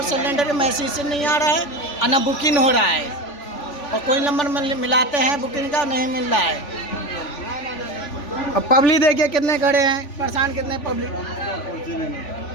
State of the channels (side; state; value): right; late; 3.5 ms